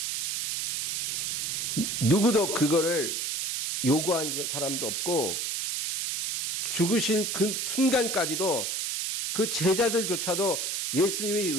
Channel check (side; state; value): right; noise; hiss, 1 dB below the sound